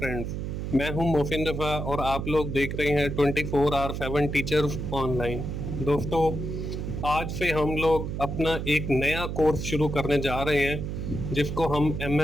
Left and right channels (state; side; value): noise; right; hum, 4 dB below the sound